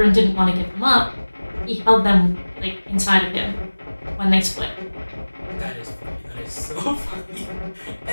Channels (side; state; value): both; inverted; correlation -1.00